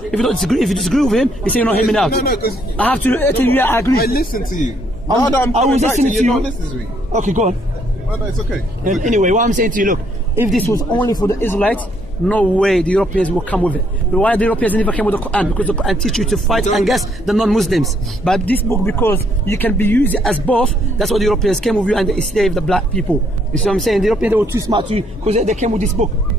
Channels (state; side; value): noise; left; hum, 19 dB below the sound